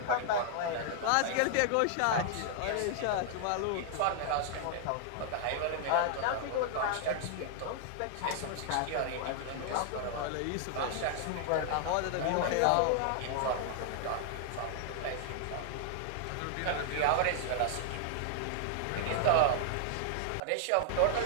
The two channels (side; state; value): both; different; correlation -0.01